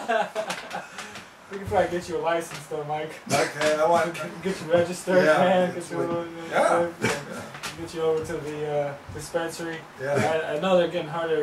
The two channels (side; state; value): both; identical; correlation 1.00